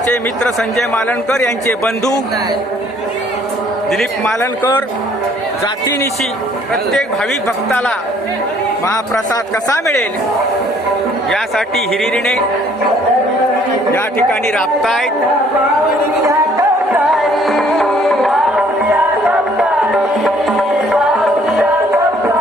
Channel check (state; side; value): normal; both; correlation 0.61